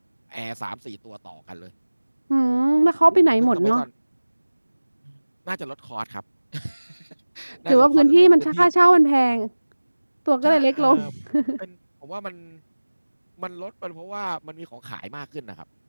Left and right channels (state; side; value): inverted; both; correlation -1.00